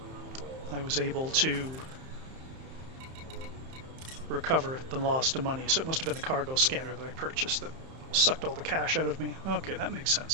I was able to recover the lost money. So it must have been the cargo scanner that I purchased that sucked all the cash out of me. Okay, that makes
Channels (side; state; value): left; late; 31 ms